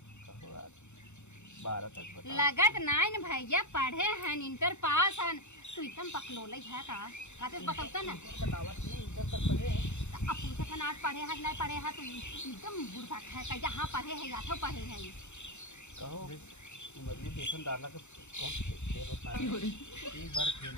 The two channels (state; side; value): late; right; 0.83 ms